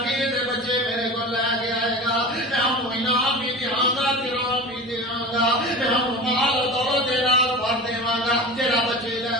دے بچے میرے کو لے کے آئے گا میں ہم انعام بھی دیاں گا کرام بھی دیاں گا میں ہم مال و دولت دے نال بھر دیواں گا جڑا بچے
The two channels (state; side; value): normal; both; correlation 0.32